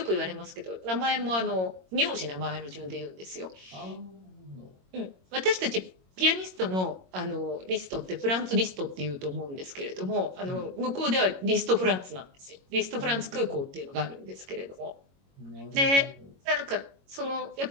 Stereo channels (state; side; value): late; left; 22 ms